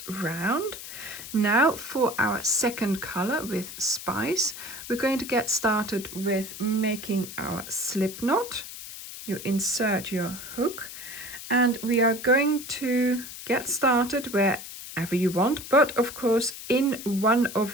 round. Now for our second color with Spice, we're going to get started with making our slip knot. You insert your hook and we are going to get started wherever you want, but of course in one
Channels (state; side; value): noise; left; hiss, 11 dB below the sound